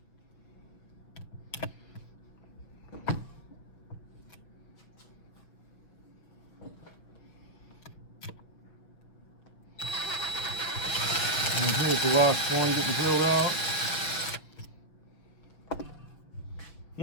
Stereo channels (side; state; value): right; late; 6.4 ms